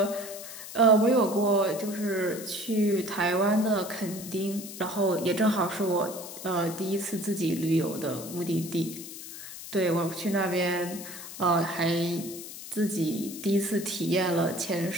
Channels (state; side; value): noise; left; hiss, 12 dB below the sound